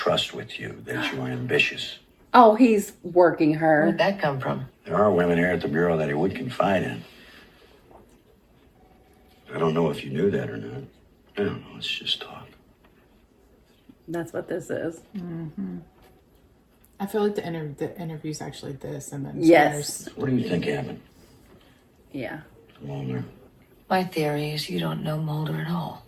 with you, that you were ambitious. Oh, he's working her. Where'd that come from? There are women here at the Bureau that he would confide in. I don't know if you knew that or not. I don't know, it's just talk. That's what this is. I feel like the interview's actually this, and then Yes. What do you think happened? Yeah. Mulder? My theory is you don't know Mulder at all.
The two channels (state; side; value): identical; both; correlation 1.00